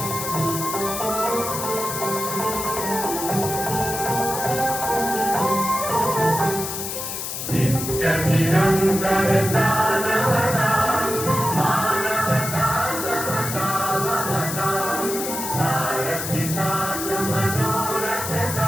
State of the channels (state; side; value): noise; left; hiss, 5 dB below the sound